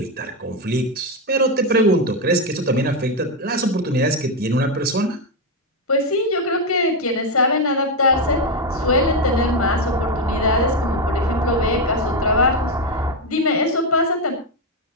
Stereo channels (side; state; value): both; normal; correlation 0.07